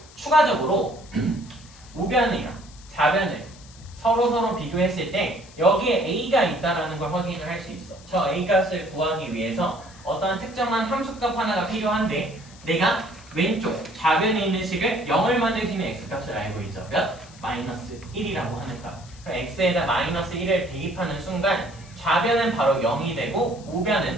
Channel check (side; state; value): left; noise; hiss, 22 dB below the sound